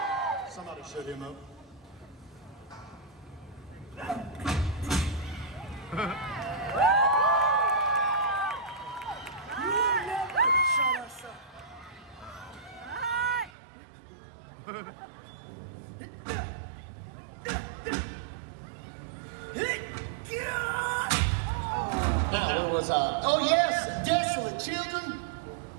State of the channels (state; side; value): drops out; left; at 13.5 s